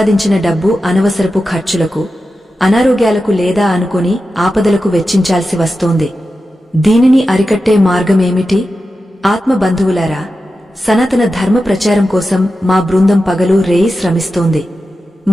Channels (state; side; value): normal; both; correlation 0.92